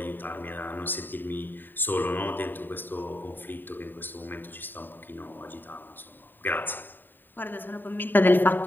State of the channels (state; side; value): late; right; 0.092 ms